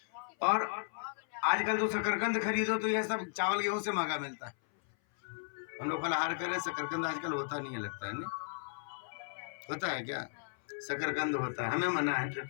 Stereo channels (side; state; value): right; silent; 54 dB below the other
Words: और आजकल तो शकरकंद खरीदो तो यह सब चावल गेहूं से महंगा मिलता है। हम लोग फलाहार करें, शकरकंद आजकल होता नहीं है, लगता है नहीं होता है क्या? शकरकंद होता है, हमें मना है